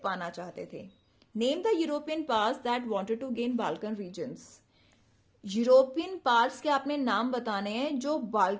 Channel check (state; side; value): identical; both; correlation 1.00